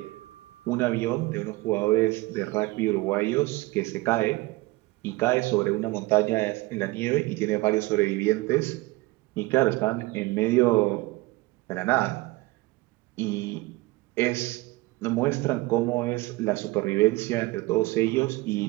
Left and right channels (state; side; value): quieter; left; 20.9 dB